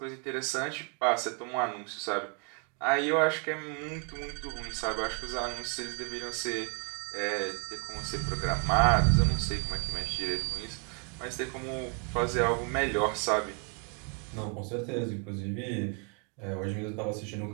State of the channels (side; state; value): left; quieter; 36.5 dB